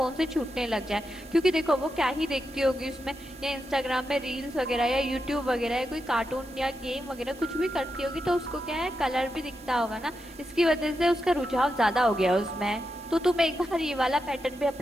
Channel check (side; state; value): both; normal; correlation 0.87